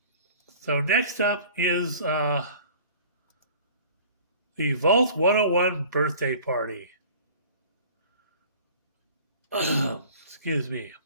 So next up is the Vault 101 birthday party. Excuse me.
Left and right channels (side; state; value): both; inverted; correlation -0.47